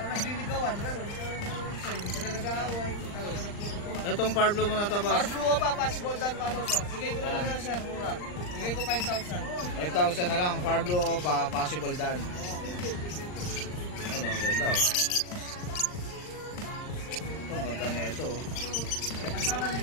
nagliligawan, gano'n. Hindi sila nag-aaway. Talaga nagpupuntuhan. Itong Parblo mo na to, boss. Para blue pa, possible dan follow sir. Bigay ko na lang yan sir, mura. Bigay ko 5,000. 5,000 na lang. Parblo o pa, possible dan. Ano, ang ganda, oh. Ito, ang ganda na ito, oh.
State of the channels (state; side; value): late; right; 39 ms